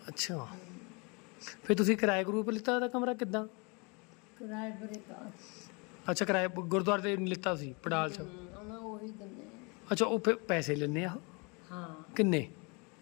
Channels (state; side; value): quieter; right; 30.8 dB